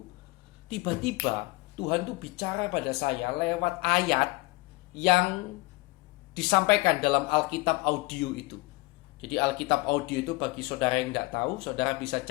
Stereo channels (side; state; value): right; quieter; 23.4 dB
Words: tiba-tiba Tuhan tuh bicara pada saya lewat ayat yang disampaikan dalam Alkitab audio itu. Jadi Alkitab audio itu bagi saudara yang tidak tahu, saudara bisa